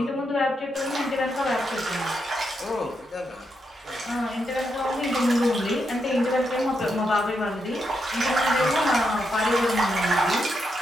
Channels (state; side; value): normal; both; correlation 0.82